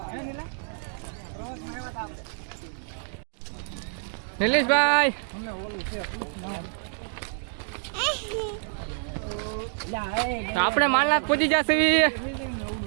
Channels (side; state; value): left; silent; digital silence